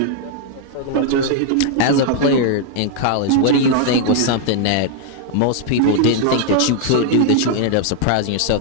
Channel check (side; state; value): both; different; correlation 0.00